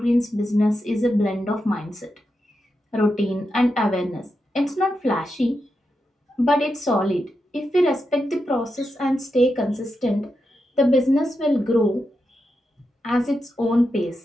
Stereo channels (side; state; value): both; normal; correlation 0.87